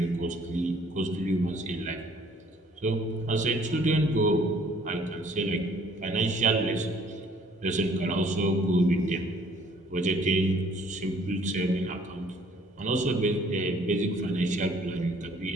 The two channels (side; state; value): both; normal; correlation 0.59